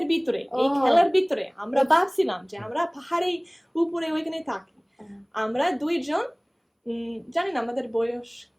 ভিতরে, এই খেলার ভিতরে আমরা ভাবছিলাম যে আমরা পাহাড়ের উপরে ওইখানে থাকি। আমরা দুইজন, জানি না আমাদের বয়স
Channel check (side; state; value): both; identical; correlation 1.00